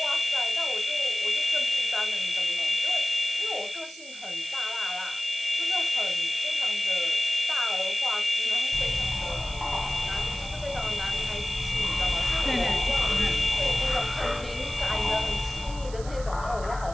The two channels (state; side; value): noise; right; hiss, 17 dB below the sound